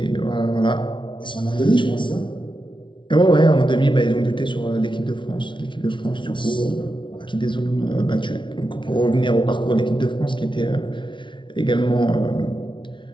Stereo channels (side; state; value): right; late; 0.24 ms